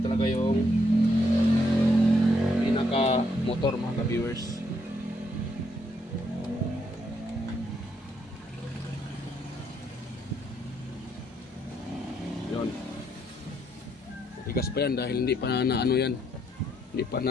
talaga yung pinaka motor mga ka-viewers. Yun. Tigas pa yan dahil hindi pa na ano yan. Hindi pa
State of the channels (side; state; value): both; normal; correlation 0.74